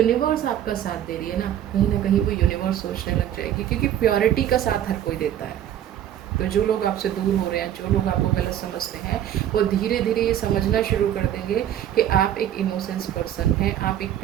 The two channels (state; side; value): quieter; left; 10.9 dB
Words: आपका साथ दे रही है ना कहीं वो यूनिवर्स सोचने लग जाएगी, क्योंकि प्योरिटी का साथ हर कोई देता है। तो जो लोग आपसे दूर हो रहे हैं, जो लोग आपको गलत समझते हैं, वो धीरे धीरे ये समझना शुरू कर देंगे कि आप एक इनोसेंस पर्सन हैं, आप एक